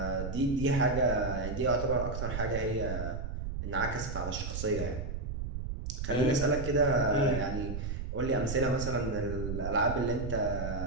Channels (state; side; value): noise; right; rumble, 5 dB below the sound